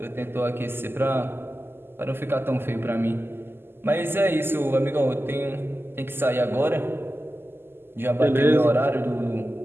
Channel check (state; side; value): late; left; 0.11 ms